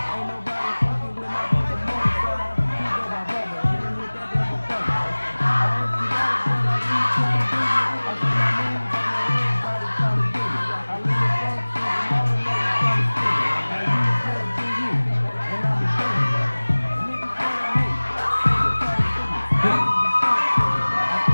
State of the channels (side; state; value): both; inverted; correlation -1.00